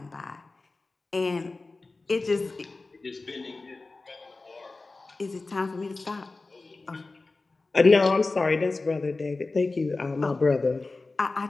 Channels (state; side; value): quieter; right; 3.5 dB